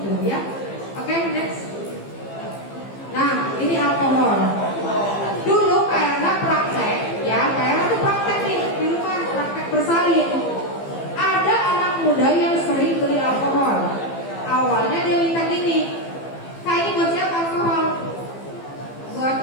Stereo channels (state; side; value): late; right; 15 ms